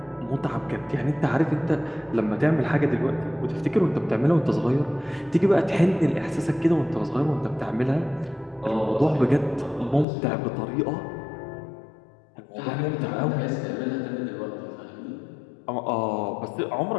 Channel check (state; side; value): drops out; right; at 10.1 s